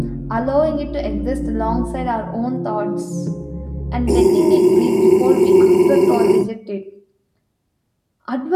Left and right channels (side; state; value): both; identical; correlation 1.00